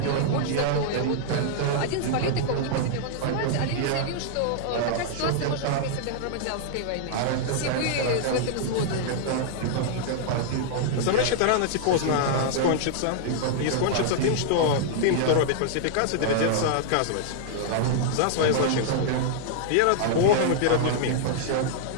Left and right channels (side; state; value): both; different; correlation -0.01